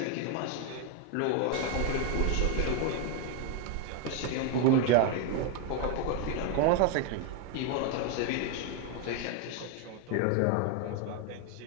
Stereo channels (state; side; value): different; both; correlation 0.01